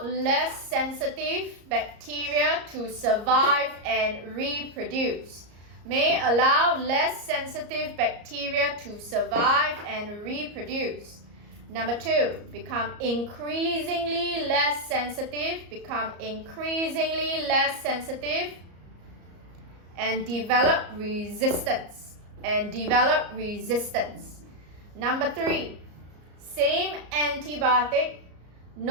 less sensitive bacteria to survive and reproduce. May allow less sensitive bacteria to survive and reproduce. Number 2, become increasingly less sensitive, and develop resistance. Number 3, same antibiotic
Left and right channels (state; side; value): late; left; 34 ms